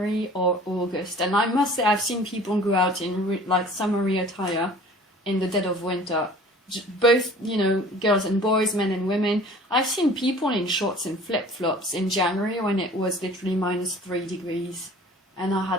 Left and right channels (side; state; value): both; normal; correlation 0.47